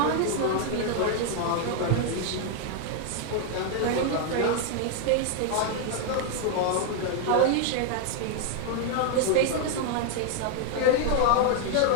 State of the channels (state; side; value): different; both; correlation 0.00